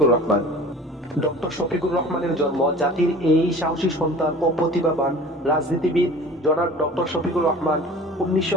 রহমান। ডক্টর শফিকুর রহমানের জন্ম জাতির এই সাহসী সন্তান ও প্রতিভাবান রাজনীতিবিদ জনাব ডক্টর শফিকুর রহমান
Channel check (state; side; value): normal; both; correlation 0.43